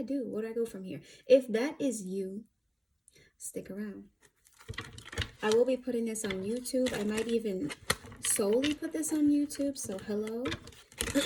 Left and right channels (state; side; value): identical; both; correlation 1.00